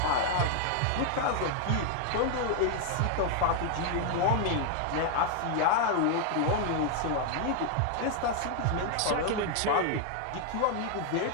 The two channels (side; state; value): both; different; correlation 0.00